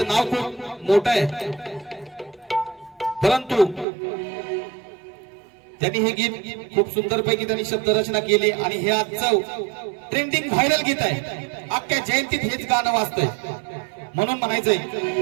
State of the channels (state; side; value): drops out; left; at 3.9 s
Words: नाव खूप मोठं आहे परंतु त्यांनी हे गीत खूप सुंदर पैकी त्यांनी शब्दरचना केली आणि हे आजचं ट्रेंडिंग व्हायरल गीत आहे अख्ख्या जयंतीत हेच गाणं वाजतंय म्हणून म्हणायचंय